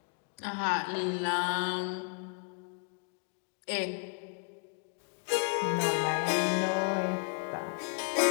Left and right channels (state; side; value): quieter; right; 38.2 dB